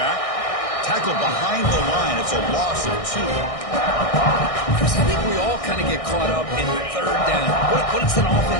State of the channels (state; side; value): late; right; 1.6 ms